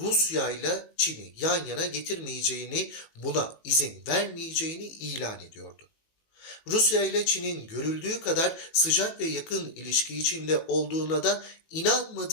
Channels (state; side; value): late; right; 18 ms